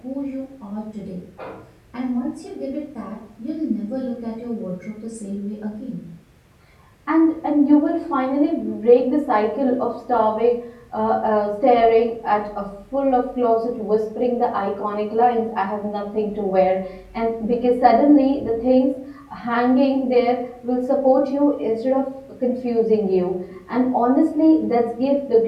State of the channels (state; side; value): identical; both; correlation 1.00